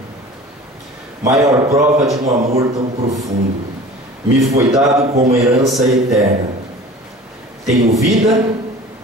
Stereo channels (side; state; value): both; normal; correlation 0.41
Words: maior prova de um amor tão profundo, me foi dado como herança eterna. Tenho vida,